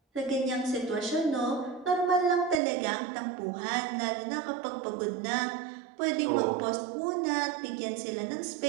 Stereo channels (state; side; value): drops out; left; at 2.6 s